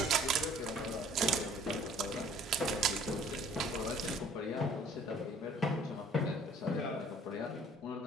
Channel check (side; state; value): both; normal; correlation 0.54